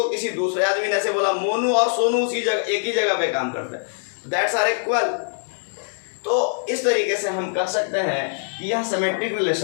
किसी दूसरे आदमी ने ऐसे बोला मोनू और सोनू उसी जगह एक ही जगह पे काम करते हैं, दैट्स आर इक्वल। तो इस तरीके से हम कह सकते हैं कि यह सिमेट्रिक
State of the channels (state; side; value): silent; right; 64 dB below the other